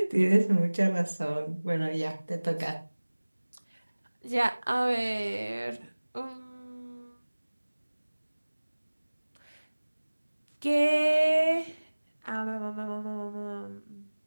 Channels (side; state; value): both; inverted; correlation -1.00